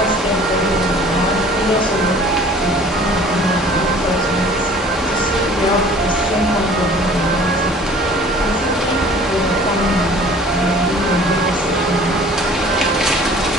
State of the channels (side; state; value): both; normal; correlation 0.50